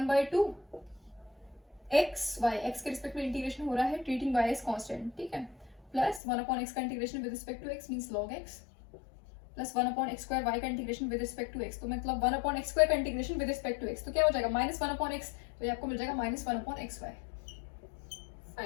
एक्स वाई, एक्स के रिस्पेक्ट में इंटीग्रेशन हो रहा है ट्रीटिंग वाई एज कांस्टेंट। ठीक है, प्लस 1 अपॉन एक्स का integration with respect to x means log x, plus 1 upon x square Y का integration with respect to x, तो मतलब 1 अपॉन एक्स स्क्वायर का integration with respect to x, तो क्या हो जाएगा -1 अपॉन एक्स, तो ये आपको मिल जाएगा -1 अपॉन एक्स वाई।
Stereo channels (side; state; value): right; drops out; at 6.2 s